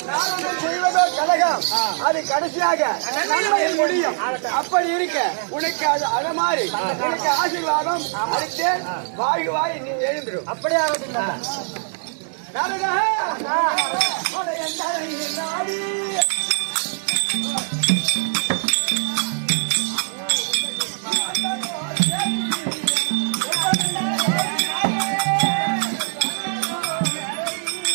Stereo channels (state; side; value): silent; left; digital silence